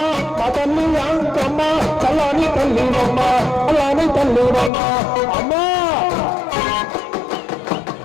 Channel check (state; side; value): drops out; right; at 4.7 s